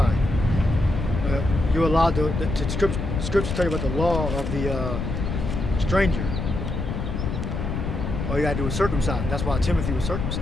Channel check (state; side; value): noise; left; rumble, 3 dB below the sound